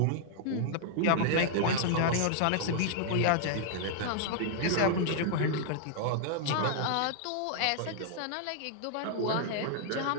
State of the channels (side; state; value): both; different; correlation -0.01